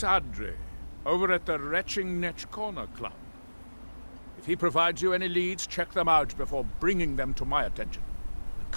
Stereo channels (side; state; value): both; inverted; correlation -1.00